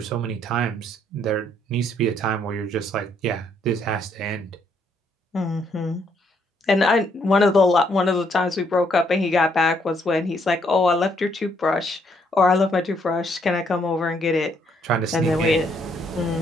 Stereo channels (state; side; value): normal; both; correlation 0.70